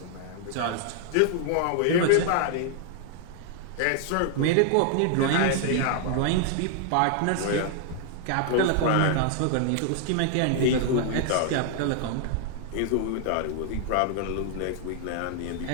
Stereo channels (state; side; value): different; both; correlation 0.00